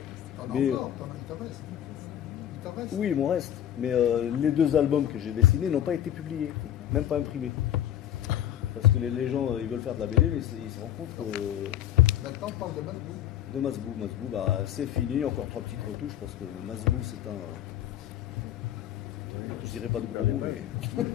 T'en as Mais- encore, il t'en reste. Il t'en reste. Oui, il m'en reste. Mais les 2 albums que j'ai dessinés n'ont pas été publiés, même pas imprimés. Parce que les gens, ils veulent faire de la BD, mais ils se rendent compte que. Maintenant, on parle de Masbou. De Masbou, c'est fini, encore 3 petites retouches, parce que Masbou, c'est un. Je dirais pas de gros mots, mais.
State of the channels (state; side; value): quieter; right; 11.2 dB